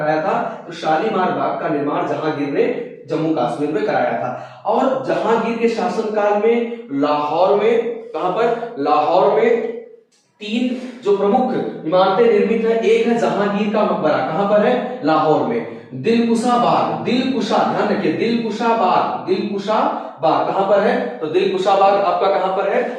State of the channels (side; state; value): both; identical; correlation 1.00